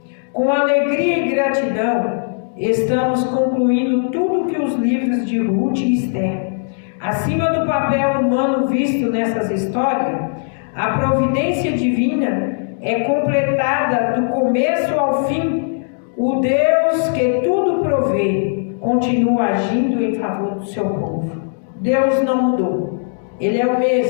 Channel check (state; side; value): silent; right; digital silence